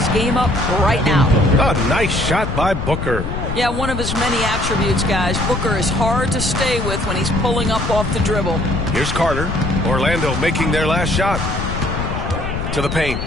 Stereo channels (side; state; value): left; noise; rumble, 4 dB below the sound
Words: game up right now. A nice shot by Booker. Yeah, one of his many attributes, guys. Booker is hard to stay with when he's pulling up off the dribble. Here's Carter. Orlando making their last shot. To the paint.